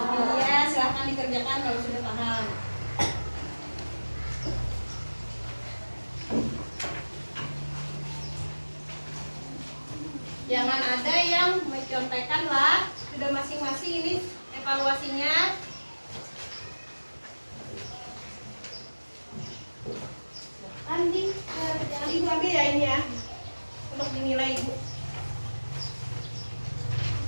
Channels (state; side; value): inverted; both; correlation -1.00